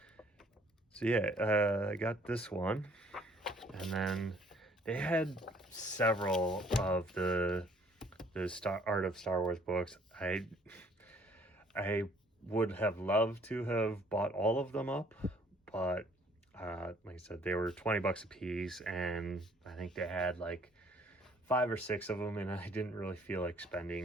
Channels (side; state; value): both; normal; correlation 0.60